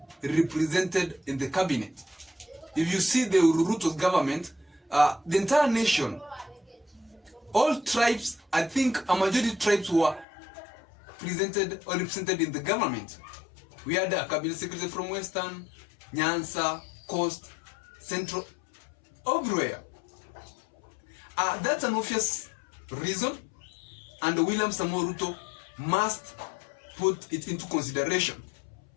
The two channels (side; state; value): right; drops out; at 10.2 s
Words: represented in the cabinet. If you see the Ruto's government, the entire nation, all tribes, I think a majority tribes were presented or represented in the government. We had a cabinet secretary from Western, Nyanza, Coast, Central, everywhere. That's an obvious reason, and William Samoei Ruto must put it into consideration.